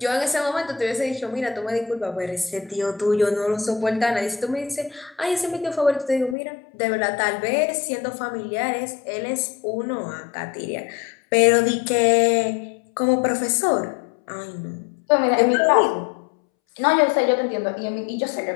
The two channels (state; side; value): drops out; right; at 6.4 s